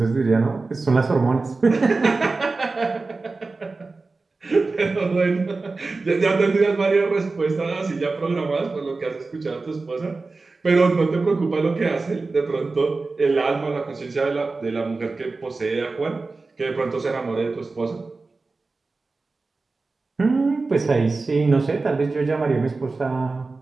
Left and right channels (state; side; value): quieter; left; 3.8 dB